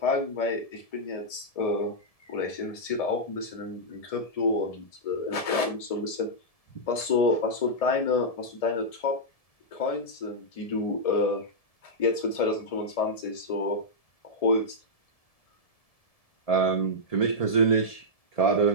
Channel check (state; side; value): late; right; 1.7 ms